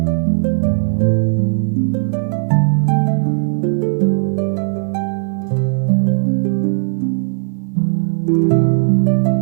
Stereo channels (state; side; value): silent; left; digital silence